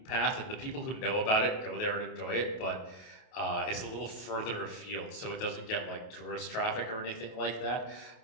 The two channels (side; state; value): right; late; 27 ms